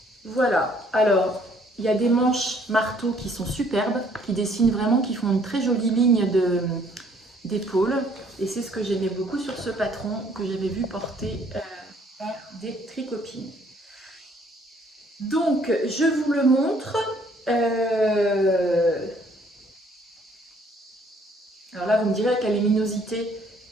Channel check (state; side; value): normal; both; correlation 0.62